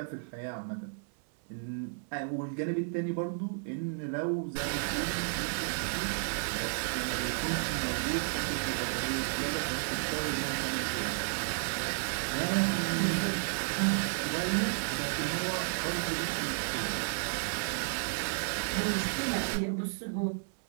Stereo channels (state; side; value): silent; left; 55 dB below the other